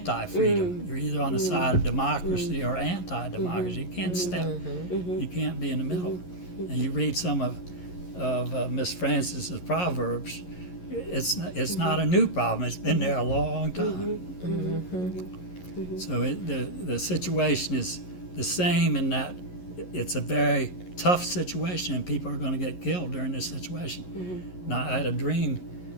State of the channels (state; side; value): late; right; 11 ms